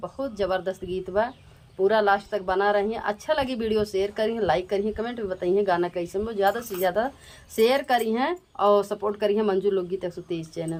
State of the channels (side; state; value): both; identical; correlation 1.00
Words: ज़बरदस्त गीत बा, पूरा लास्ट तक बना रही हैं। अच्छा लगी वीडियो शेयर करिए, लाइक करिए, कमेंट में बताइए गाना कैसे में। ज़्यादा से ज़्यादा शेयर करी हैं और सपोर्ट करी हैं मंजू लोकगीत 123